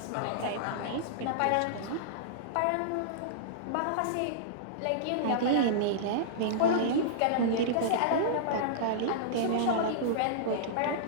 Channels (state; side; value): different; both; correlation -0.03